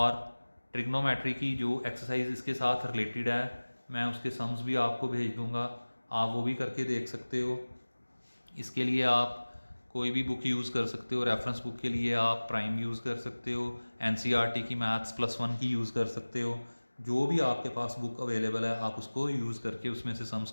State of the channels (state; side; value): inverted; both; correlation -1.00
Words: ट्रिग्नोमेट्री की जो एक्सरसाइज इसके साथ रिलेटेड है मैं उसके सम्स भी आपको भेज दूंगा, आप वो भी करके देख सकते हो। इसके लिए आप कोई भी बुक यूज़ कर सकते हो। रेफरेंस बुक के लिए आप प्राइम यूज़ कर सकते हो, एनसीईआरटी की मैथ्स +1 की यूज़ कर सकते हो। जो भी आपके पास बुक अवेलेबल है आप उसको यूज़ करके उसमें से सम्स